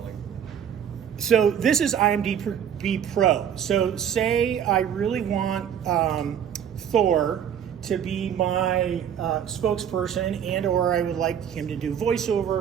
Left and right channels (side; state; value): left; quieter; 8.9 dB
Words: So this is IMDb Pro. So say I really want Thor to be my spokesperson, and or I would like him to do